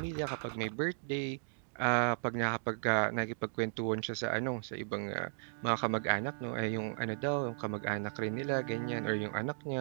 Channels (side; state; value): left; silent; digital silence